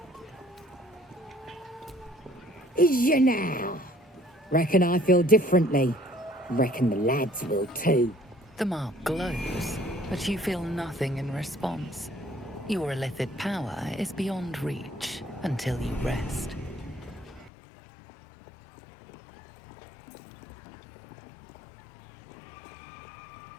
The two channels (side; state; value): right; drops out; at 17.5 s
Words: Is ya now? Reckon I feel differently. Reckon the lads will too. The mark glows, but you feel nothing in response. Your illithid power is beyond reach until you rest.